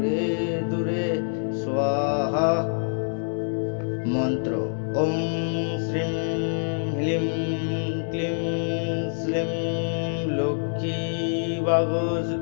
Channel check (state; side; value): silent; right; digital silence